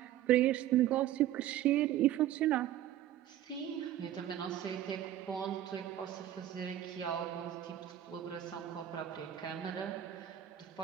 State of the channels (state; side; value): quieter; left; 12.1 dB